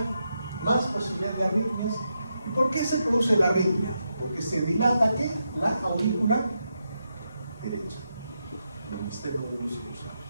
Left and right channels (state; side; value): inverted; both; correlation -0.84